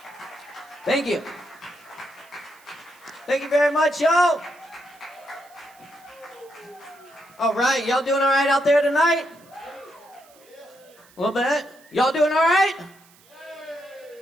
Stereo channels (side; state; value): right; noise; hiss, 28 dB below the sound